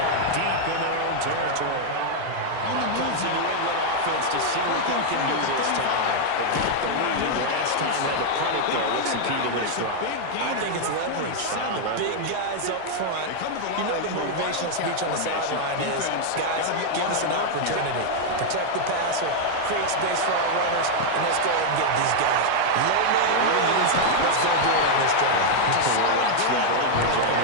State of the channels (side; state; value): both; different; correlation 0.00